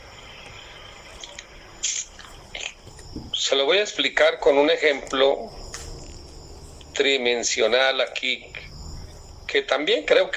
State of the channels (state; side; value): identical; both; correlation 1.00